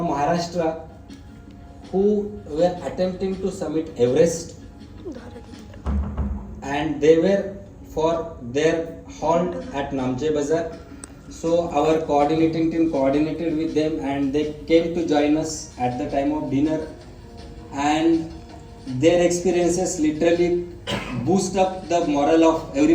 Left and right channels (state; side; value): identical; both; correlation 1.00